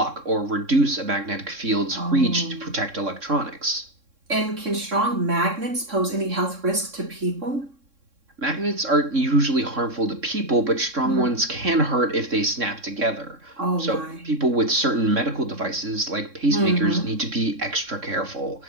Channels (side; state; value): left; late; 3.6 ms